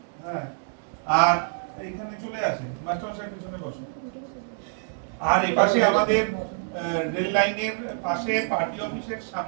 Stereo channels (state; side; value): silent; left; digital silence